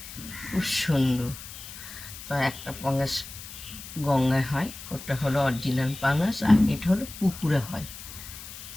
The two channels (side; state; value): left; noise; hiss, 13 dB below the sound